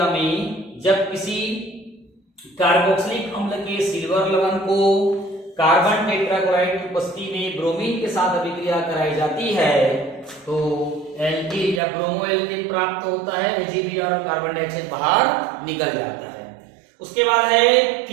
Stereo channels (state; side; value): drops out; left; at 11.8 s